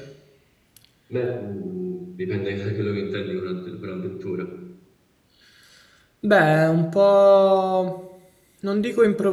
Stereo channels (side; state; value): both; identical; correlation 1.00